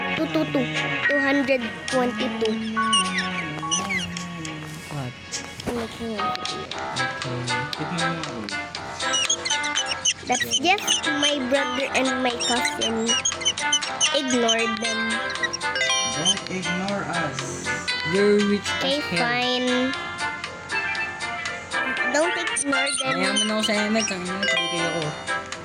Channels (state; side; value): identical; both; correlation 1.00